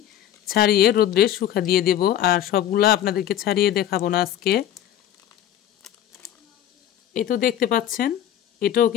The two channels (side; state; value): right; quieter; 11.1 dB